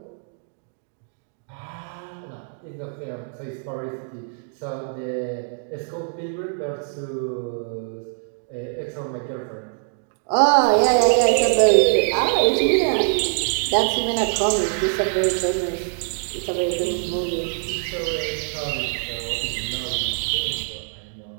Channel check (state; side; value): silent; left; digital silence